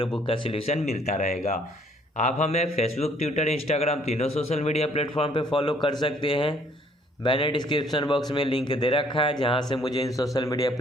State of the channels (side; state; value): both; normal; correlation 0.62